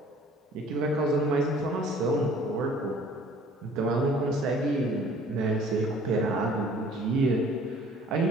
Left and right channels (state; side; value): normal; both; correlation 0.53